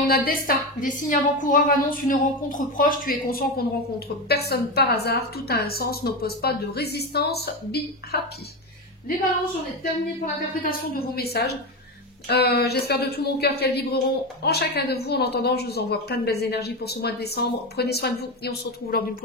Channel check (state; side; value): normal; both; correlation 0.16